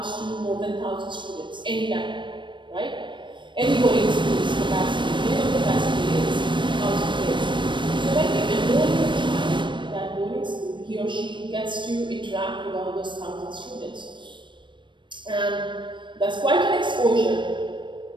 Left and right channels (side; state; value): left; late; 0.23 ms